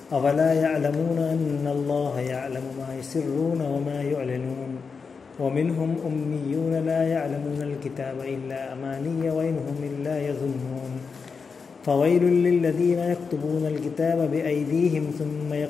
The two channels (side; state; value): right; quieter; 5.3 dB